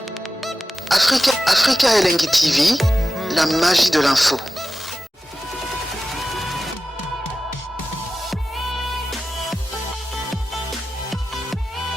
Africa Elengi TV, la magie de l'info.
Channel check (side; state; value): both; normal; correlation 0.93